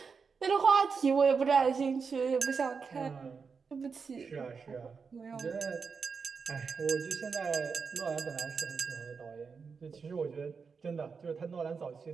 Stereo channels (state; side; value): quieter; left; 5.4 dB